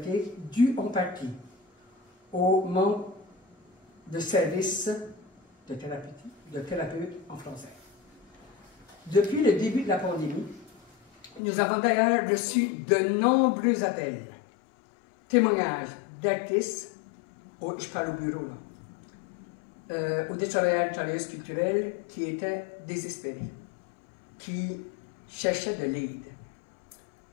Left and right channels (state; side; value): drops out; right; at 11.4 s